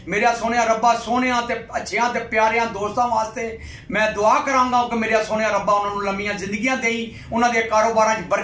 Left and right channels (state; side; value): identical; both; correlation 1.00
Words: मेरा सोनिया रब्बा सोनिया ते अच्छियां ते प्यारियां दोस्तां वास्ते मैं दुआ करांगा कि मेरा सोनिया रब्बा उन्हां नूं लंबियां जिंदगियां देई, उन्हां दे कारोबारां च